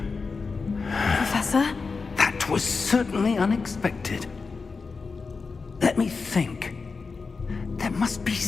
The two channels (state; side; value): quieter; right; 4.6 dB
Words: Professor? That was certainly unexpected. Let me think. There must be